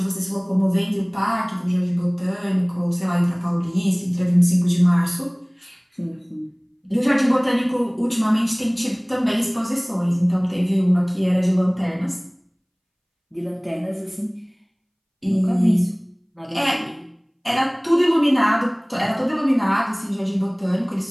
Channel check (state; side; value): identical; both; correlation 1.00